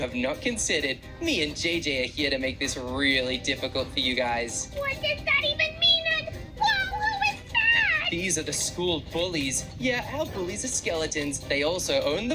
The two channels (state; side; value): identical; both; correlation 1.00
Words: not considered. Me and JJ are here to make this really difficult for you guys. What does that even mean? And whoa, who is that? these are the school bullies. Yeah, our bullies are skeletons. They also own